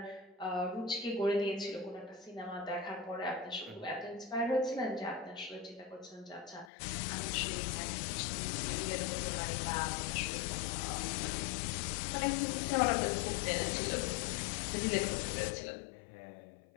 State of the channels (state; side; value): drops out; right; at 6.7 s